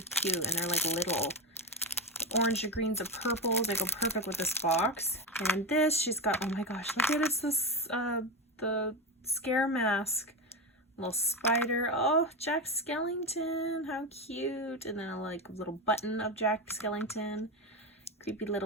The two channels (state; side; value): normal; both; correlation 0.16